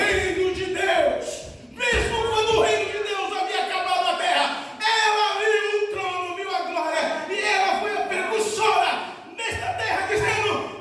de Deus, mesmo quando o reino de Deus havia acabado na terra. Ela viu o trono, viu a glória, e ela foi a precursora nesta terra, dizendo:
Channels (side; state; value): both; identical; correlation 1.00